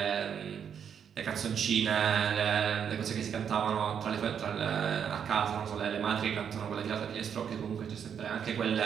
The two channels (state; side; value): quieter; left; 7.9 dB